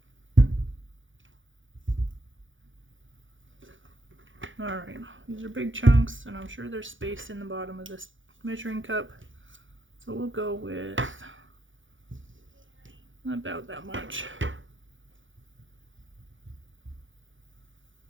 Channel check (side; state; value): left; late; 0.56 ms